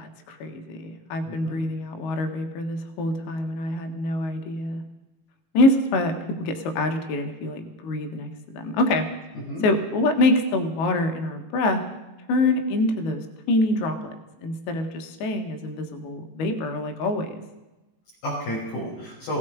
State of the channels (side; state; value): right; late; 19 ms